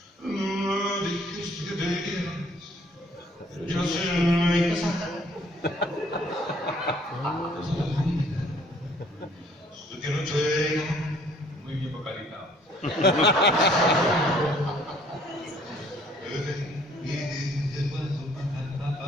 dijiste que te irías, yo sé mi casa. Que no te... Muy bien vocalizado.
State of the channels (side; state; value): both; normal; correlation 0.59